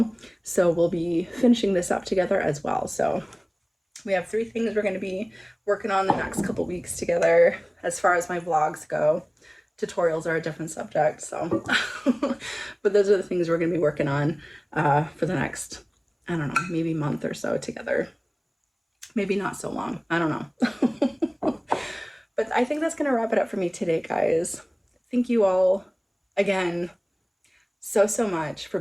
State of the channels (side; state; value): both; identical; correlation 1.00